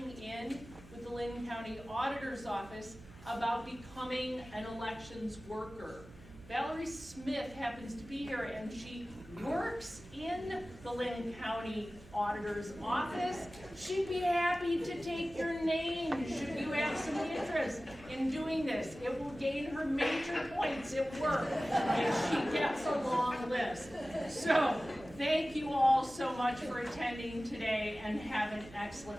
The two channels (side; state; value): right; noise; hum, 20 dB below the sound